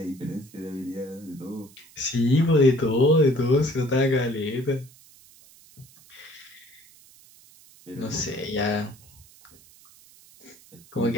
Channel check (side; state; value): right; noise; hiss, 25 dB below the sound